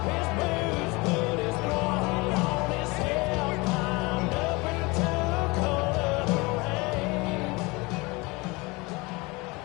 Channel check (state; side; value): quieter; right; 25.0 dB